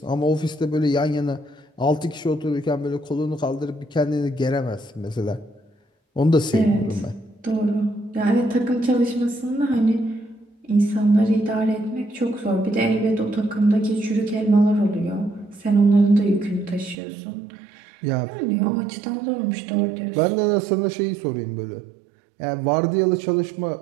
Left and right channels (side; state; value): left; drops out; at 16.9 s